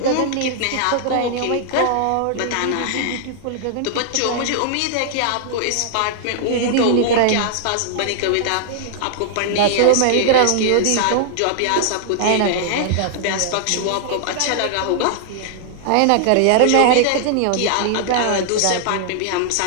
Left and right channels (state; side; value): different; both; correlation -0.01